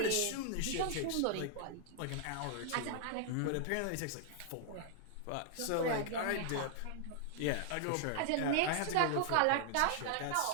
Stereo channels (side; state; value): both; different; correlation 0.00